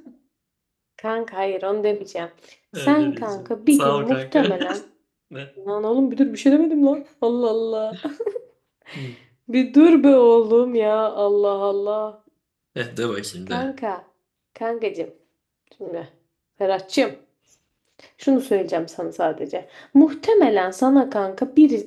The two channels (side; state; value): both; identical; correlation 1.00